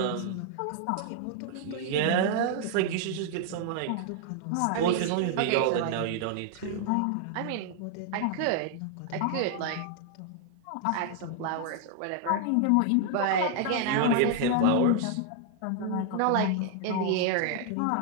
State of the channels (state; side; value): different; both; correlation 0.00